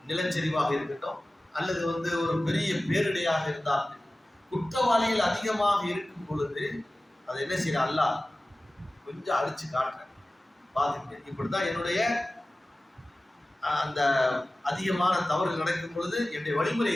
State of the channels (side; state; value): both; normal; correlation 0.97